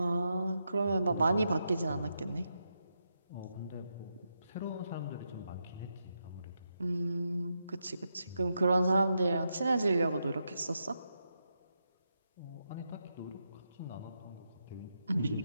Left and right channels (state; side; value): inverted; both; correlation -0.84